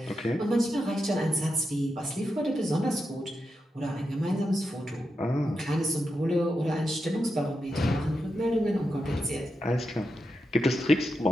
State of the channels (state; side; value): normal; both; correlation 0.87